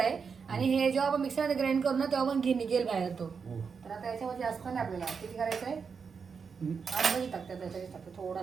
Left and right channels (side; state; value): left; quieter; 5.8 dB